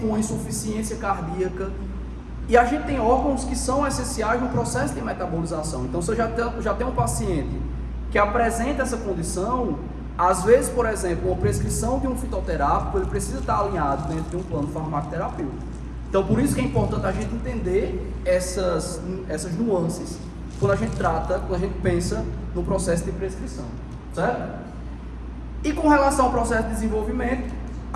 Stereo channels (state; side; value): identical; both; correlation 1.00